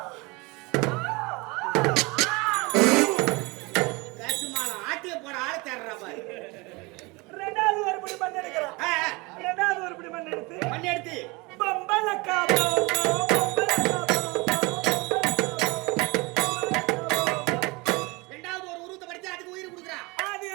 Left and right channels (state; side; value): quieter; left; 25.6 dB